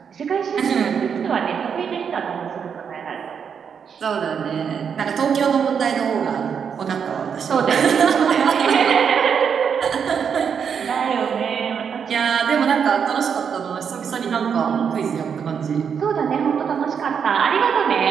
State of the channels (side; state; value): left; quieter; 7.0 dB